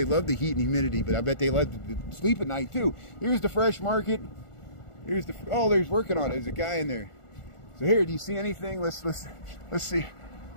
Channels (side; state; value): right; late; 1.4 ms